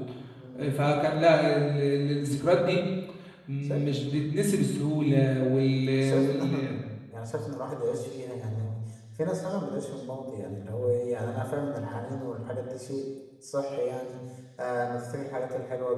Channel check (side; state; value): both; identical; correlation 1.00